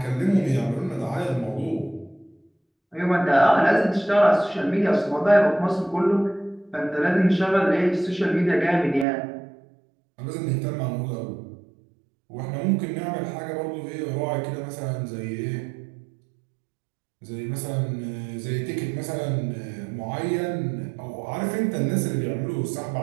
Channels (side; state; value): left; drops out; at 9.1 s